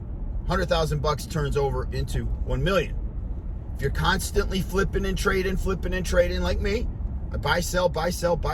$100,000 turns over into 1 million. If you're constantly flipping and trading like me, I buy, sell, buy, sell,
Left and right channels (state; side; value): identical; both; correlation 1.00